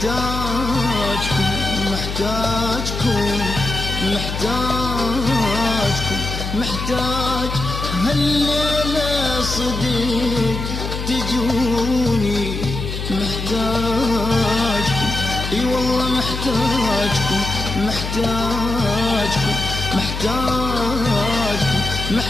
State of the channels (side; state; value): left; noise; hum, 5 dB below the sound